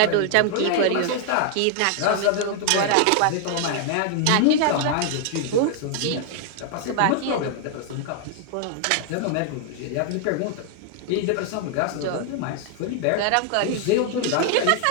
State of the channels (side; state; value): both; different; correlation 0.00